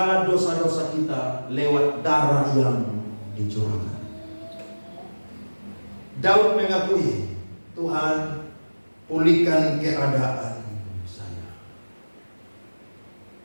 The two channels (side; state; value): both; inverted; correlation -1.00